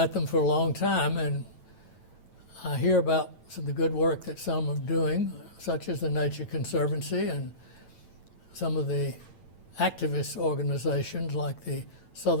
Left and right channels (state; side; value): late; right; 9.1 ms